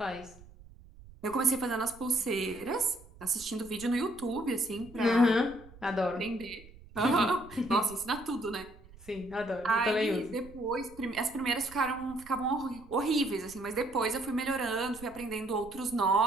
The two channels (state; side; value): noise; right; rumble, 20 dB below the sound